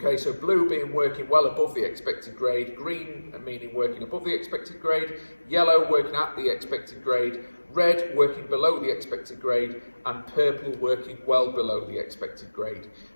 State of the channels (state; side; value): inverted; both; correlation -1.00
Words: so blue being working well above the expected grade, green meaning working above the expected grade, yellow working at the expected grade, red working below the expected grade, and purple working well below the expected grade.